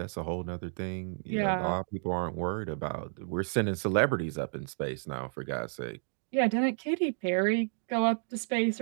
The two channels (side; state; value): left; silent; digital silence